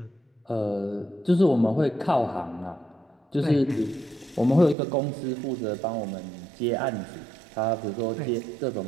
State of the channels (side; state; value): left; drops out; at 4.8 s